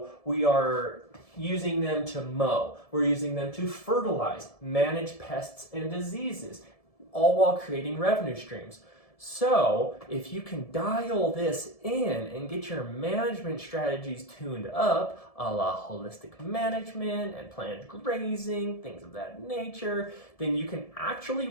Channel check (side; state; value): right; late; 1.7 ms